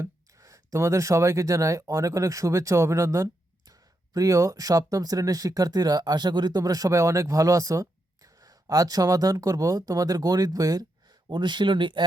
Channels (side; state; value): both; normal; correlation 0.83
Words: তোমাদের সবাইকে জানাই অনেক অনেক শুভেচ্ছা ও অভিনন্দন। প্রিয় সপ্তম শ্রেণীর শিক্ষার্থীরা, আশা করি তোমরা সবাই অনেক ভালো আছো। আজ সমাধান করব তোমাদের গণিত বইয়ের অনুশীলনী